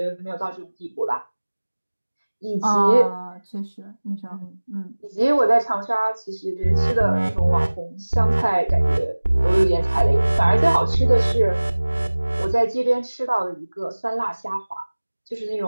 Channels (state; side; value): inverted; both; correlation -1.00